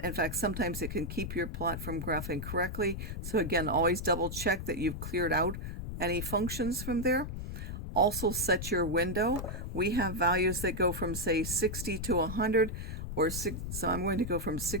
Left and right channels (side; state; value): left; noise; rumble, 6 dB below the sound